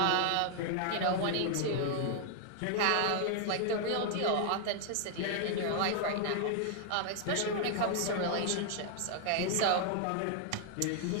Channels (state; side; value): different; both; correlation 0.00